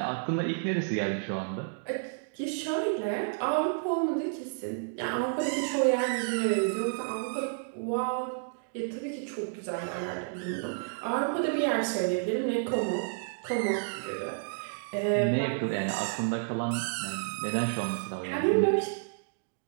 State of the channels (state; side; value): silent; left; digital silence